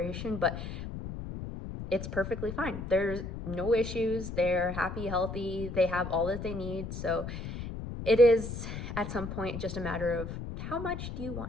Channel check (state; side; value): noise; left; rumble, 7 dB below the sound